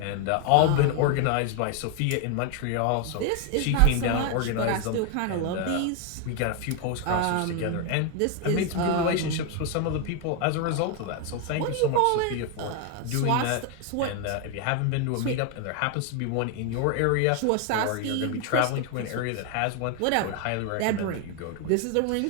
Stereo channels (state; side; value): different; both; correlation 0.01